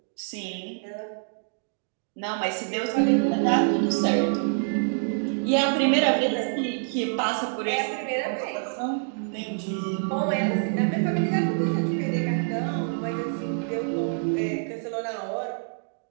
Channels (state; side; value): silent; left; digital silence